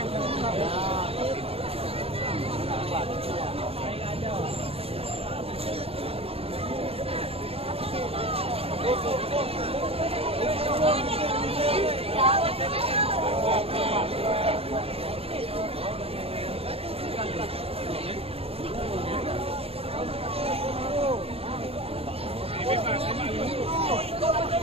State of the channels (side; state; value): left; late; 0.28 ms